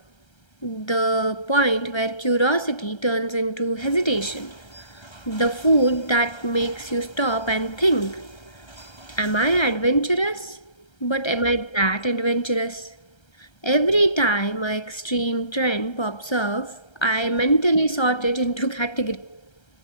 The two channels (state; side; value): late; right; 1.3 ms